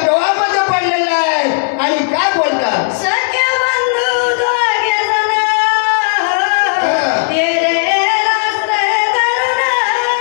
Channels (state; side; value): silent; right; digital silence